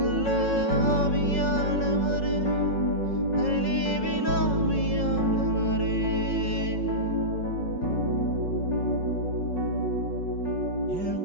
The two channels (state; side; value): late; right; 5.4 ms